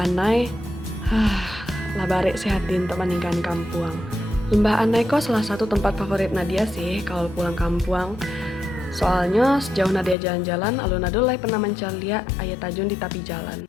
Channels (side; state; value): right; drops out; at 10.2 s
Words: lah barek sehatin untuk meninggalkan kampung. Lembah Anai kok salah satu tempat favorit Nadia sih kalau pulang kampung. Soalnya sejauh Nadia jalan-jalan, alun adulai pernah mencari lihat ayat tajun di tepi